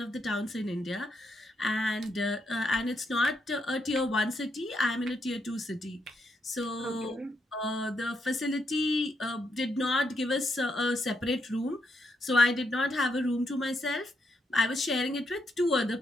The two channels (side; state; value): both; normal; correlation 0.80